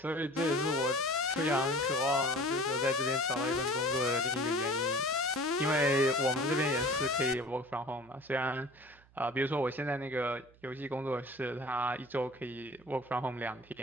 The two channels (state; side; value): noise; right; hum, 28 dB below the sound